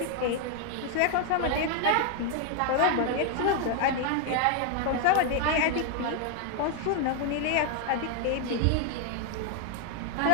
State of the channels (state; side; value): different; both; correlation 0.01